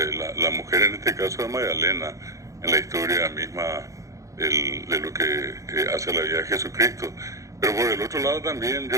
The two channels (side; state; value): left; late; 0.15 ms